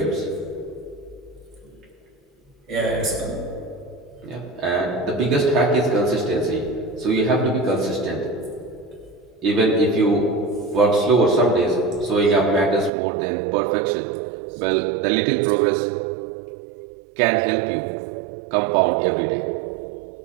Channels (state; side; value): drops out; left; at 12.9 s